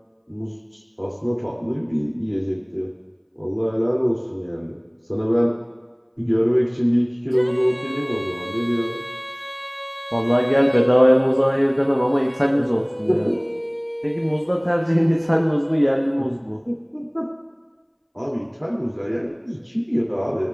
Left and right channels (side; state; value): both; identical; correlation 1.00